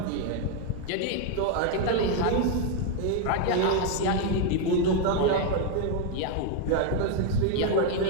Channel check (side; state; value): both; different; correlation 0.01